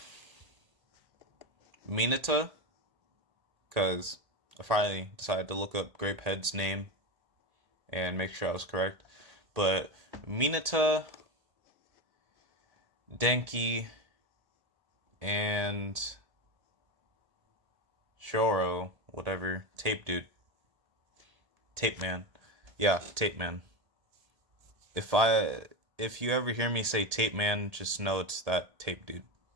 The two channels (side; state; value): left; late; 1.7 ms